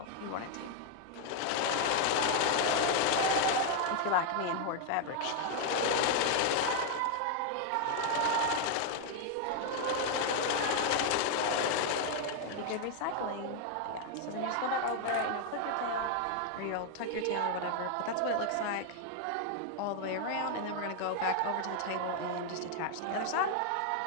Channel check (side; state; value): both; different; correlation 0.00